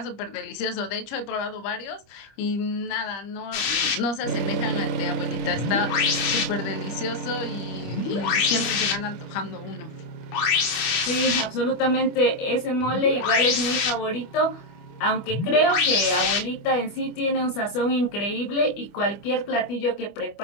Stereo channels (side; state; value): right; late; 25 ms